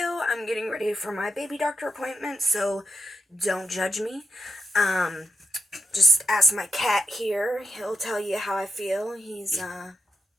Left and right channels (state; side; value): normal; both; correlation 0.85